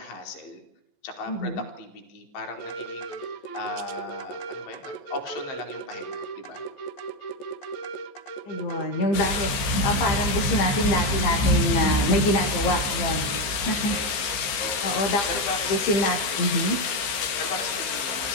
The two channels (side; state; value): right; late; 15 ms